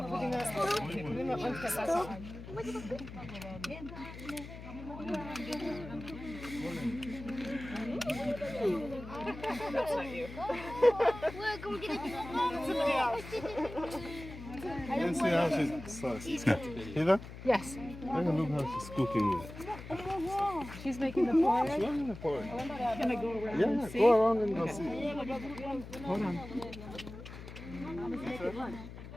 You see how she's Heather? Yes. Look how she's cooking it. She's making the porridge. She's making the porridge. Can I go around Yeah, and see? go around and go see. Hold on.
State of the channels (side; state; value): left; noise; hum, 12 dB below the sound